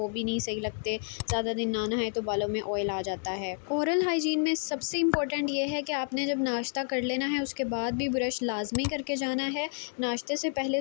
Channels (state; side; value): silent; right; 58 dB below the other